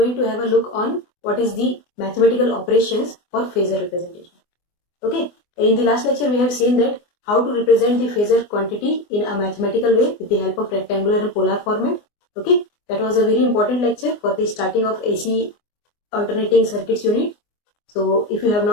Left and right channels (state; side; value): late; right; 24 ms